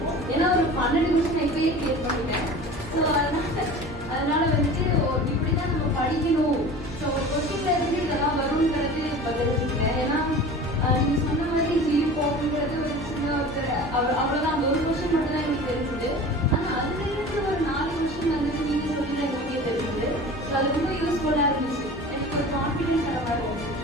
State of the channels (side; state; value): both; normal; correlation 0.38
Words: ஏன்னா ஒரு 12 நிமிஷம் இப்பயே கிளியர் பண்ணிட்டேன். ஸோ அதனால வந்துட்டு இப்படி தான் நம்ம படிக்கணும். ஸோ ஒரு கொஸ்டின்ல இருந்து இதெல்லாம் வருங்கிறது பதிலுங்க. ஏன்னா நீங்கள் சொன்ன மாதிரி ஜியு போகுங்கிறது ஒரு சின்ன ஒருத்தர் அவ்வளோதான், அந்த ஒரு கொஸ்டின் மட்டும் தான் எனக்கு தெரிஞ்சுது. ஆனால் அதுலேருந்து ஒரு 4 கொஸ்டின் வந்துட்டு நீங்கள் சொல்லி எங்களுக்கே தெரிஞ்சுது. ஸோ அது ரொம்ப யூஸ்ஃபுல்லாக இருந்துச்சு. எனக்கு ஒரு கான்ஃபிடென்ஸ் அந்த மாதிரி இருந்துச்சு.